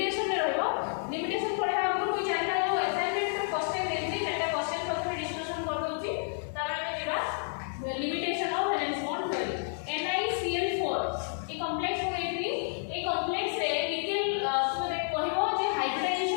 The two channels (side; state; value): right; silent; 58 dB below the other